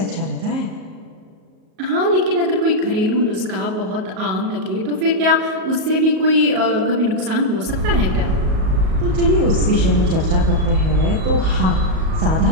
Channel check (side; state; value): left; late; 38 ms